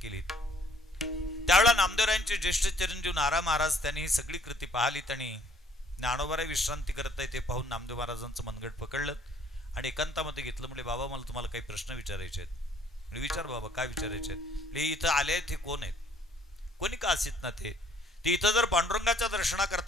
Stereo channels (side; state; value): both; normal; correlation 0.60